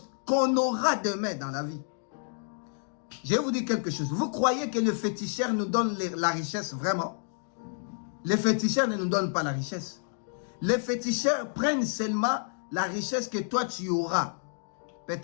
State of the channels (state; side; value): silent; right; digital silence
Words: qu'on aura demain dans la vie. Je vais vous dire quelque chose. Vous croyez que le féticheur nous donne la richesse vraiment? Les féticheurs ne nous donnent pas la richesse. Les féticheurs prennent seulement la richesse que toi tu auras.